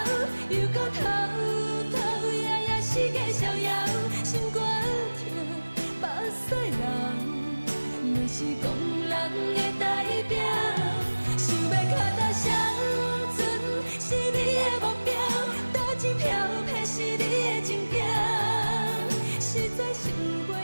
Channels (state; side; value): inverted; both; correlation -1.00